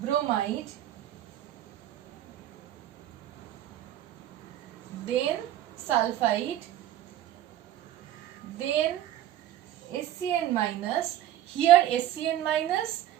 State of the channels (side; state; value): left; quieter; 12.6 dB